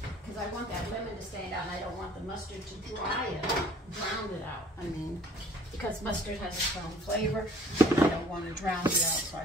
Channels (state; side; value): normal; both; correlation 0.53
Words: Because I want that lemon to stand out, and I don't want the mustard to drown it out. I mean, because mustard has its own flavor, and I don't want to drown it out, so I